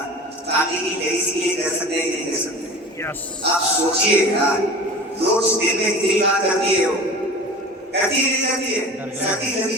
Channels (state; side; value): normal; both; correlation 0.37